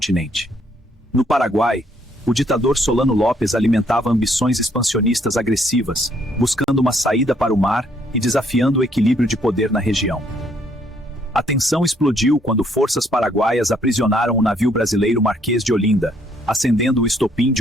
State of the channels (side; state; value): both; normal; correlation 0.68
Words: No Paraguai, o ditador Solano Lopes alimentava ambições expansionistas agressivas, buscando uma saída para o mar e desafiando o equilíbrio de poder na região. A tensão explodiu quando forças paraguaias aprisionaram o navio brasileiro Marquês de Olinda, acendendo o estopim